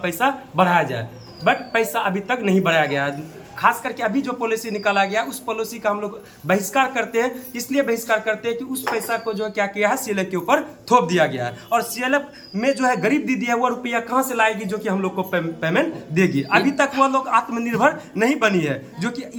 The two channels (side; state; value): both; identical; correlation 1.00